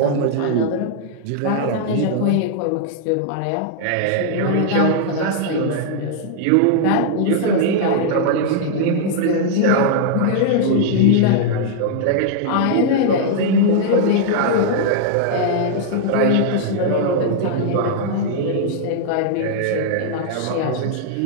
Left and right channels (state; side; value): different; both; correlation -0.01